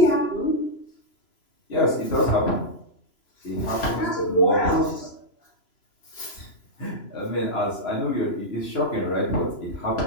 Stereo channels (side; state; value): right; late; 3.0 ms